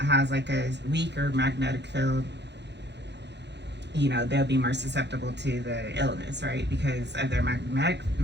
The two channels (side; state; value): left; late; 0.50 ms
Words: has a weaker magnetic field. They'll be more susceptible to the illness, right? Because of their